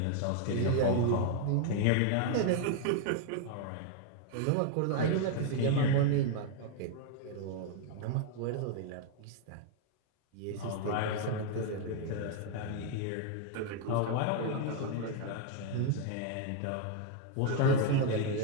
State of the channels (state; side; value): different; both; correlation 0.00